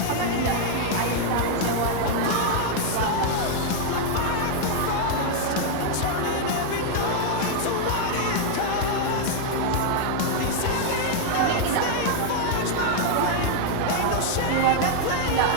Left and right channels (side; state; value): both; different; correlation -0.01